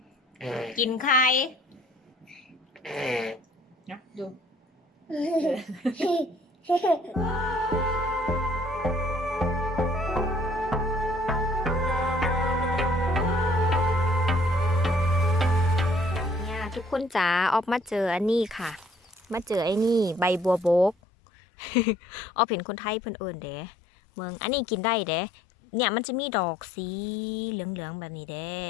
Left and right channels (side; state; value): right; drops out; at 21.0 s